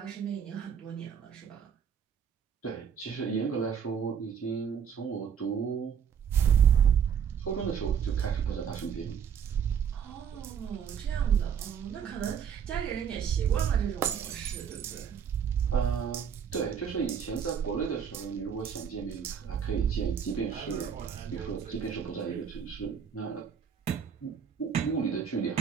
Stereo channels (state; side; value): quieter; left; 7.6 dB